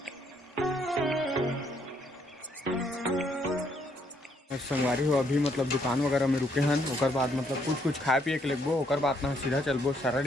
संगवारी हो अभी मतलब दुकान वगैरह में रुके हैं और बाद मतलब कुछ खाए पिए के लगबो और बाद ना सीधा चलबो सारा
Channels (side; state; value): both; normal; correlation 0.71